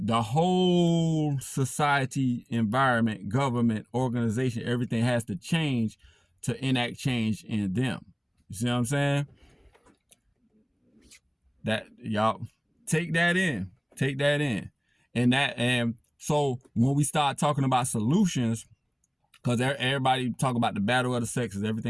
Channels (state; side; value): identical; both; correlation 1.00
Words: whole society, environment, government, organization, everything has to change to enact change in them. You see what I'm saying? That, y'all take that in. And so when we start talking about solutions, because everybody talk about the battle of the sexes,